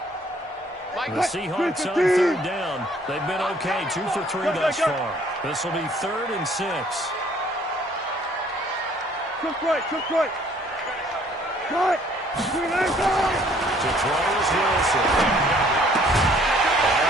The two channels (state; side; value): normal; both; correlation 0.60